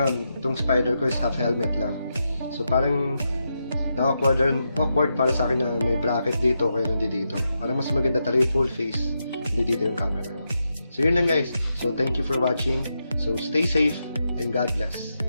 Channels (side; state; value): both; inverted; correlation -0.86